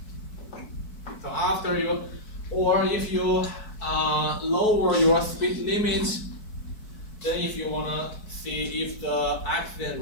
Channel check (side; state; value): right; late; 4.6 ms